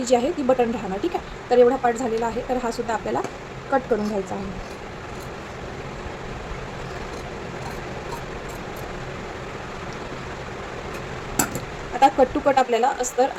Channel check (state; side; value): identical; both; correlation 1.00